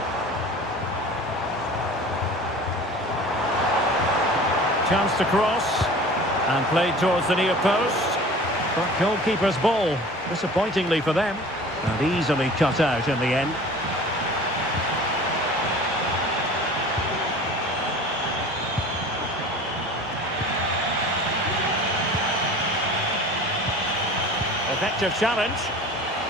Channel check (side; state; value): both; normal; correlation 0.41